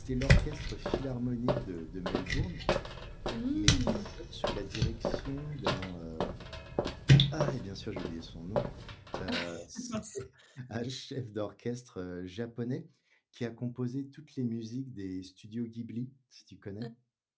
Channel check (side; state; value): both; identical; correlation 1.00